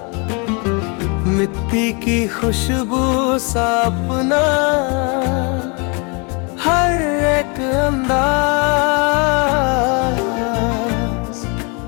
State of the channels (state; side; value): quieter; right; 32.9 dB